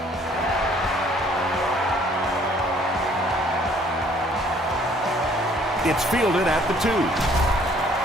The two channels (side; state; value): both; normal; correlation 0.60